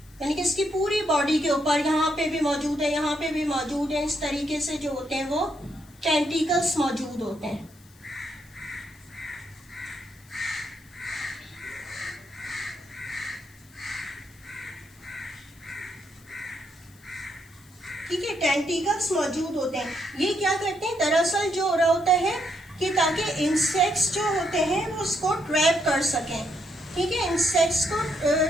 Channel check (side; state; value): left; noise; hiss, 27 dB below the sound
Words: यानी कि इसकी पूरी बॉडी के ऊपर यहाँ पे भी मौजूद है, यहाँ पे भी मौजूद है, इस तरीके से जो होते हैं वो टेंटिकल्स मौजूद होते हैं। ठीक है, टेंटिकल्स मौजूद होते हैं। ये क्या करते हैं, दरअसल जो हो रहा होता है कि ताकि इंसेक्ट्स जो होते हैं वो उसको ट्रैप कर सकें। ठीक है, इंसेक्ट्स को